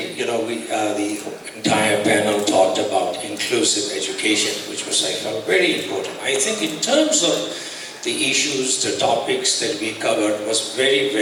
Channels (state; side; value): identical; both; correlation 1.00